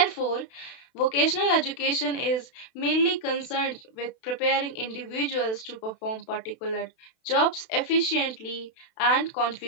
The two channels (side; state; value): right; late; 32 ms